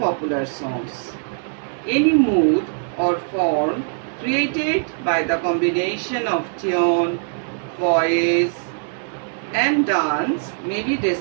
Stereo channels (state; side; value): silent; left; digital silence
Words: songs. Any mood or form created by the combination of tune, voice, and dance may be